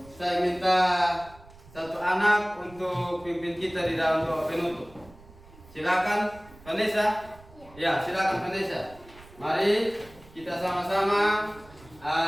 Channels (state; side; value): noise; right; rumble, 23 dB below the sound